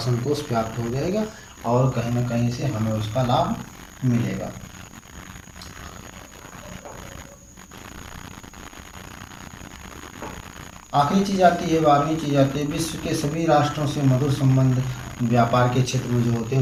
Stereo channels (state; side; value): identical; both; correlation 1.00